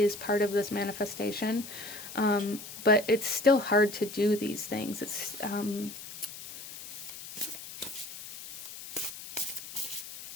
part of this manifestation. But it's still hard to do these things. It's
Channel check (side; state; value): left; noise; hiss, 12 dB below the sound